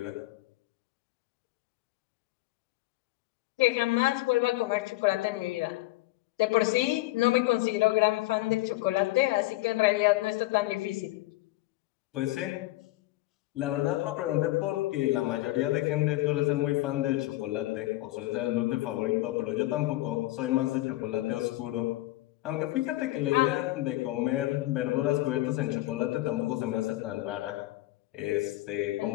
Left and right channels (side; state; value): right; quieter; 18.1 dB